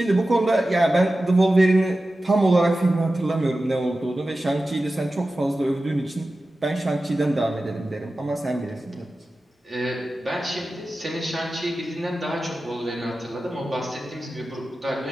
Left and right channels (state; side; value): normal; both; correlation 0.94